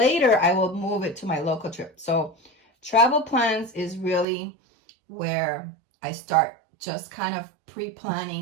I will move it to my local trip. So travel plans is really where I start just kind of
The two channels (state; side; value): drops out; left; at 4.2 s